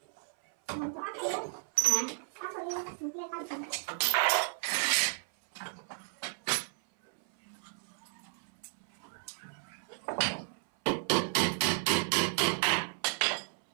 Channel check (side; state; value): left; silent; 56 dB below the other